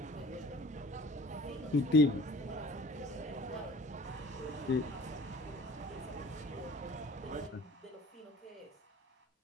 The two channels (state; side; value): normal; both; correlation 0.47